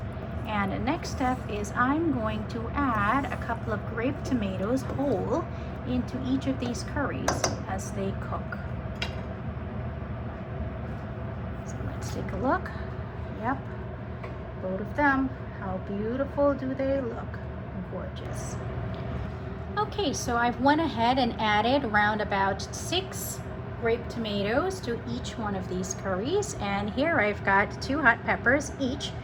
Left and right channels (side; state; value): both; identical; correlation 1.00